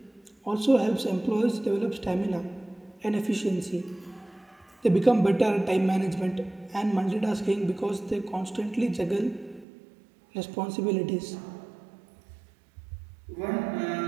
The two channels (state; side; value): drops out; left; at 9.7 s